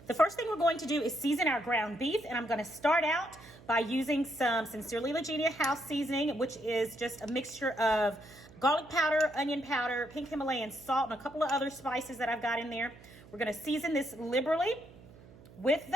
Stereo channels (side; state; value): right; noise; hum, 21 dB below the sound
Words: The first thing we're going to do is season our ground beef, and I'm going to start out by using some Sincerely Legenia house seasoning, which is just a mixture of garlic powder, onion powder, pink Himalayan salt, and a couple of other spices that I've got in there. We're going to season this liberally with